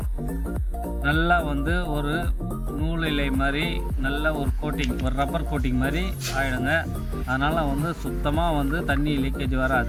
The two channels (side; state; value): both; identical; correlation 1.00